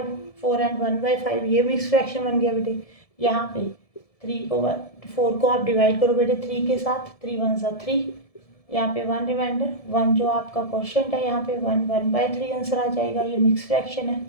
4 एंड 1/5, ये मिक्स फ्रैक्शन बन गया बेटे। यहाँ पे 4 को आप डिवाइड करो बेटे 3 के साथ, 3 1 ज़ा 3, यहाँ पे 1 रिमाइंडर, 1 जो आपका क्वेश्चन है, यहाँ पे 1/3 आंसर आ जाएगा, ये मिक्स फ्रैक्शन है।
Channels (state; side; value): late; right; 1.7 ms